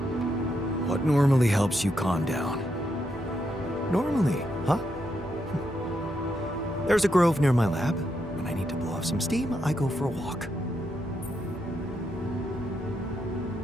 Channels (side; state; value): both; normal; correlation 0.81